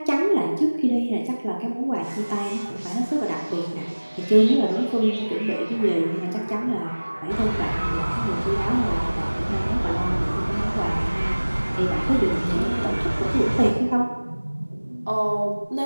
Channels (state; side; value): inverted; both; correlation -1.00